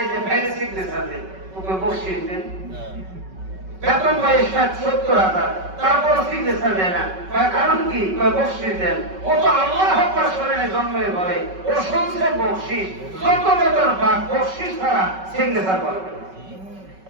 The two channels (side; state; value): left; late; 5.3 ms